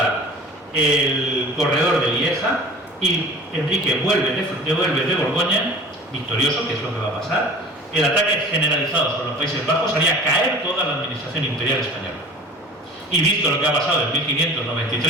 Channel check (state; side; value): normal; both; correlation 0.44